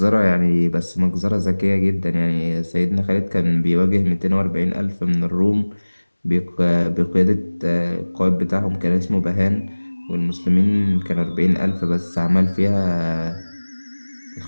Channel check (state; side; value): inverted; both; correlation -1.00